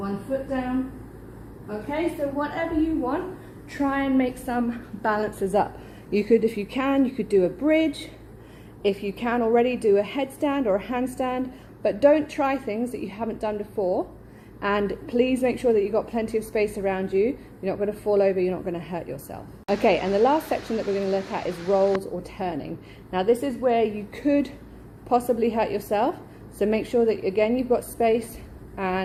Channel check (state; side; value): identical; both; correlation 1.00